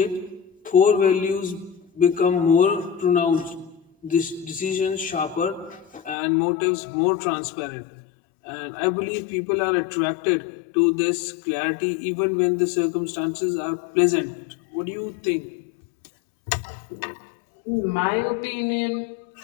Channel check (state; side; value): drops out; right; at 6.2 s